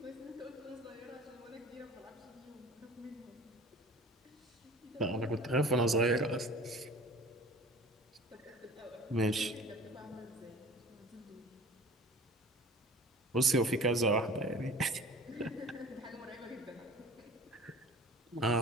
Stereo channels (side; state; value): both; normal; correlation 0.44